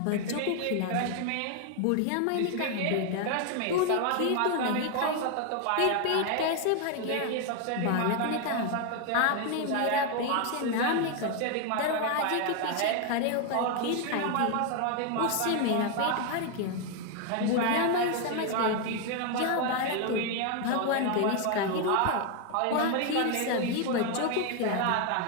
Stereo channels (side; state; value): both; different; correlation 0.01